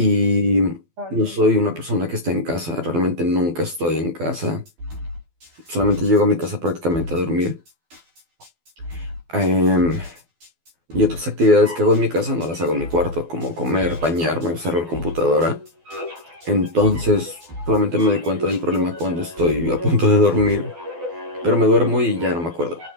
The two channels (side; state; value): left; late; 12 ms